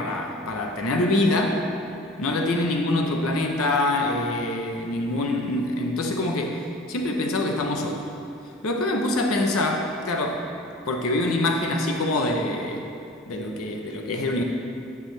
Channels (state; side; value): normal; both; correlation 0.42